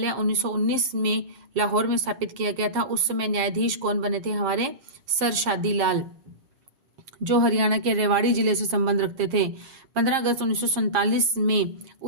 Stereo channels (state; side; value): late; left; 7.4 ms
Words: 1919 में लाहौर में स्थापित किया गया था। उस समय न्यायाधीश कौन बने थे? हमारे सर शादी लाल, जो हरियाणा के रेवाड़ी जिले से संबंध रखते थे। 15 अगस्त 1947 में